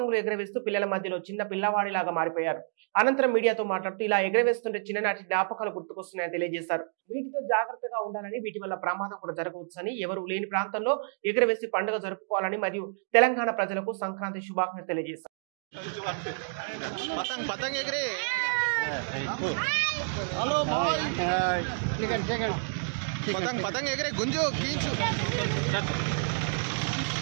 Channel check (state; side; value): silent; left; digital silence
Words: ఎగరవేస్తూ పిల్లల మధ్యలో చిన్న పిల్లవాడిలాగా మారిపోయారు. అనంతరం మీడియాతో మాట్లాడుతూ ఇలా ఎగరవేస్తుంటే చిన్ననాటి జ్ఞాపకాలు గుర్తుకొస్తున్నాయని తెలియజేశారు. వీటితో జాగ్రత్తగా ఉండాలని, వీటి వల్ల ప్రమాదం కూడా జరగవచ్చని, ఎవరు లేని ప్రాంతంలో ఎగరవేసి పండుగ జరుపుకోవాలని మరియు తెలంగాణ ప్రజలకు సంక్రాంతి శుభాకాంక్షలు తెలియజేశారు. हेलो भाई पतंग पतंग एगरे गुंजो खींचो